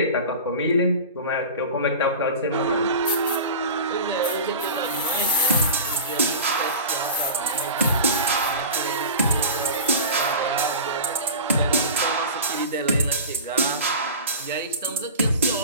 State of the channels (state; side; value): inverted; both; correlation -0.32